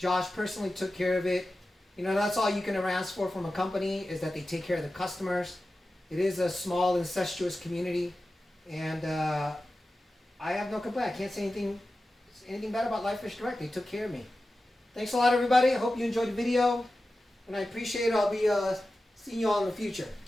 personally took care of it. You know, that's all you can ever ask for from a company, is that they take care of the customers. It is a small, incestuous community, and I have no complaint. I can't say anything bad about Live Fish Direct. They took care of me. Thanks a lot, everybody. I hope you enjoyed the video, and I appreciate it. I'll be seeing you all in the future.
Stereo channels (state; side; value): normal; both; correlation 0.94